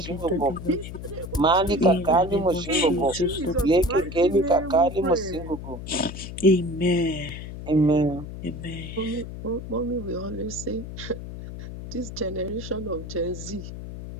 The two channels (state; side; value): noise; left; hum, 10 dB below the sound